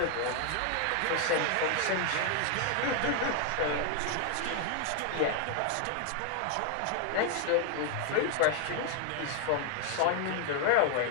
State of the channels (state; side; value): different; both; correlation 0.00